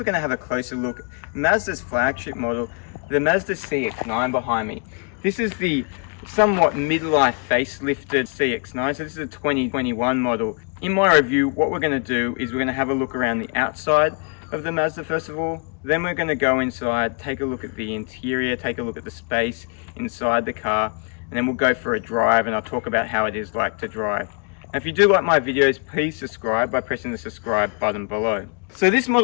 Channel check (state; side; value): quieter; right; 37.9 dB